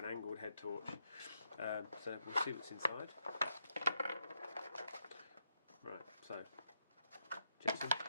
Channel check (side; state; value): both; inverted; correlation -0.80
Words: angled head torch. So we'll see what's inside. Right, so Jetson.